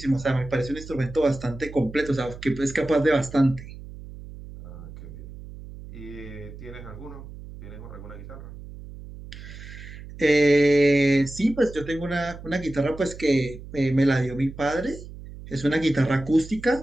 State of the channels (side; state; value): right; noise; hum, 14 dB below the sound